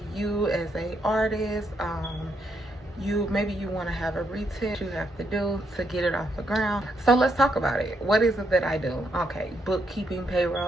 you as a artist. Maybe you want to have a retail you have to do to get it off the ground. So let's talk about it. What is it that I do? Okay, bookkeeping,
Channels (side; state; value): both; normal; correlation 0.77